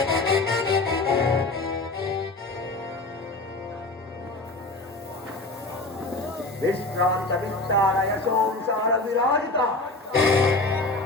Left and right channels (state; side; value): quieter; right; 3.1 dB